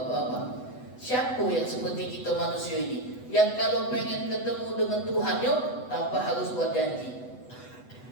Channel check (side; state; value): right; late; 8.0 ms